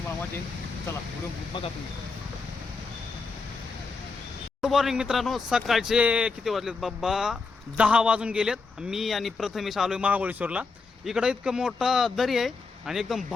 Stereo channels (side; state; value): right; quieter; 4.3 dB